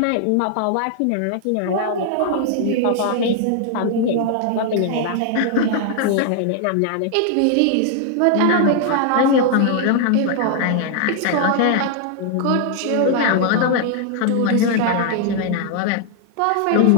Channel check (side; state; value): both; different; correlation 0.00